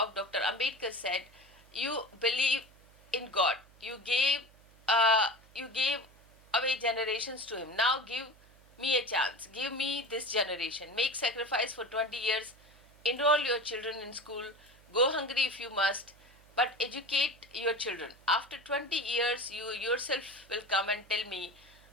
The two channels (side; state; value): right; noise; hum, 26 dB below the sound